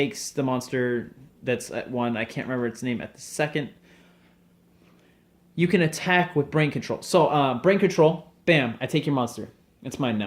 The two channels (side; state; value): both; identical; correlation 1.00